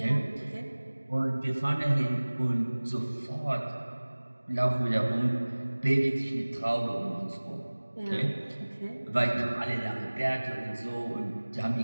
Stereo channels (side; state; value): both; inverted; correlation -1.00